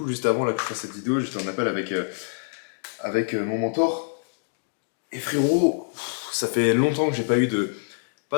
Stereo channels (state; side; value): silent; right; digital silence